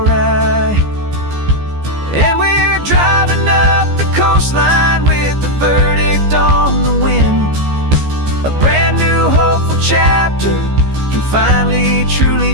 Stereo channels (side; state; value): left; late; 14 ms